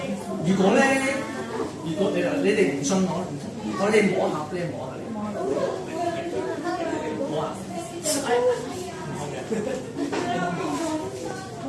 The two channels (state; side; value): identical; both; correlation 1.00